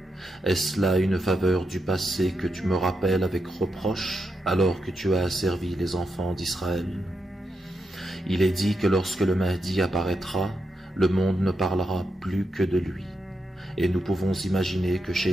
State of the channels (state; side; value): normal; both; correlation 0.85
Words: Est-ce là une faveur du passé que tu me rappelles avec reproche, alors que tu as asservi les enfants d'Israël? Il est dit que lorsque le Mahdi apparaîtra, le monde ne parlera plus que de lui, et nous pouvons imaginer que